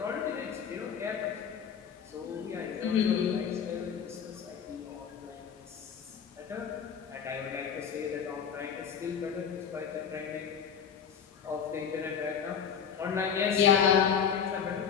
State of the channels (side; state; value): right; quieter; 7.4 dB